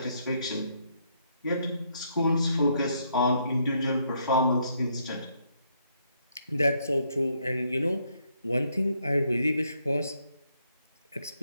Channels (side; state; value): both; inverted; correlation -0.73